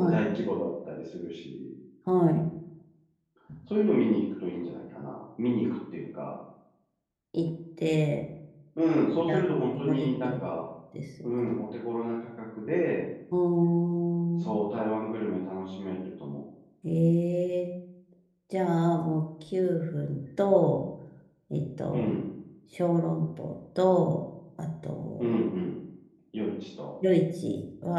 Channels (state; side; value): identical; both; correlation 1.00